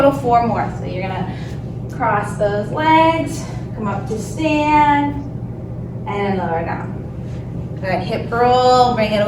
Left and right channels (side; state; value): both; identical; correlation 1.00